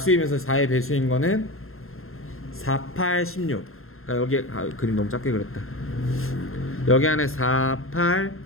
4의 배수인 거는 4, 8, 16. 그러니까 여기 그림 너무 작게 그렸다. 여기 안에 4, 8,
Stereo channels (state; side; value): late; right; 0.61 ms